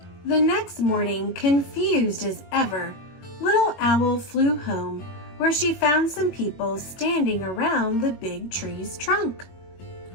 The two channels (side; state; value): right; late; 21 ms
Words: The next morning, confused as ever, Little Owl flew home, where she found some people standing around the big tree's trunk.